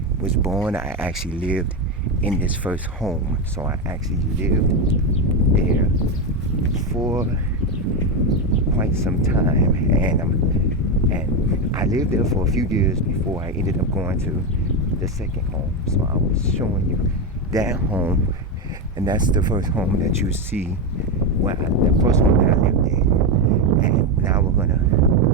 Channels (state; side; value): normal; both; correlation 0.11